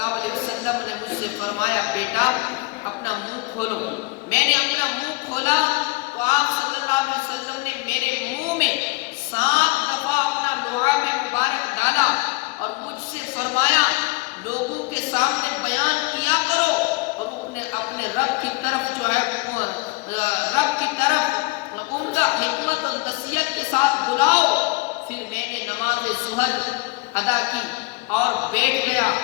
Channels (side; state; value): right; quieter; 24.6 dB